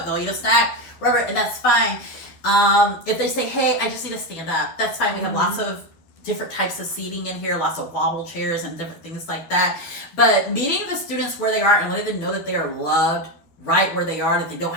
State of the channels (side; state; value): right; late; 12 ms